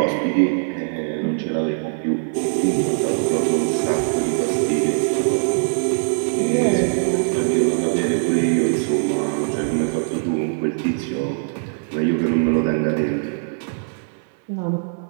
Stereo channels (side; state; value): left; silent; digital silence